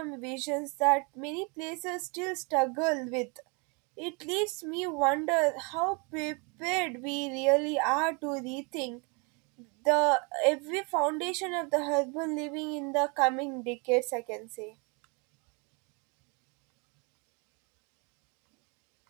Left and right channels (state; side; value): quieter; left; 32.2 dB